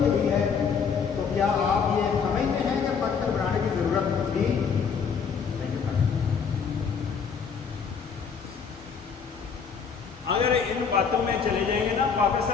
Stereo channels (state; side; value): quieter; right; 6.2 dB